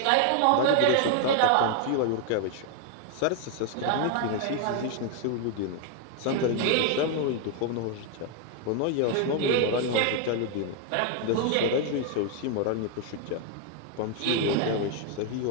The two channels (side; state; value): both; different; correlation 0.00